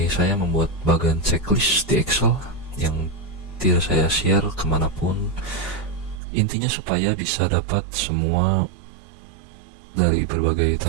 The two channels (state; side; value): drops out; left; at 6.2 s